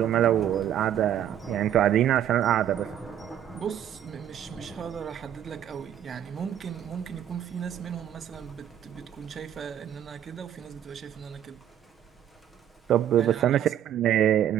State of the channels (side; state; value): left; quieter; 10.5 dB